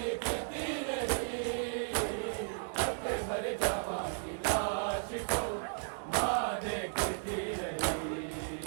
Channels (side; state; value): left; silent; digital silence